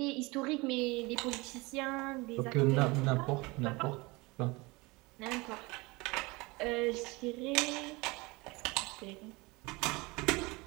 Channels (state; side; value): quieter; left; 24.4 dB